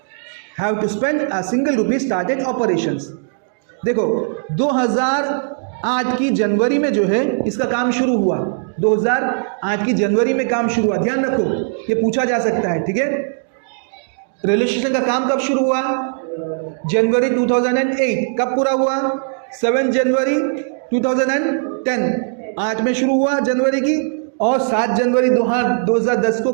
have to spend a single rupee started operations. देखो 2008 की जनवरी में जो है इसका काम शुरू हुआ। 2008 की जनवरी में काम शुरू हुआ, ध्यान रखो ये पूछा जा सकता है। ठीक है, रेलवे स्टेशन का काम कब शुरू हुआ? जनवरी 2008। कब पूरा हुआ? 7 जनवरी 2010। 8 में शुरू हुआ जनवरी की और 7 जनवरी 2010 को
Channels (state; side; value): silent; left; digital silence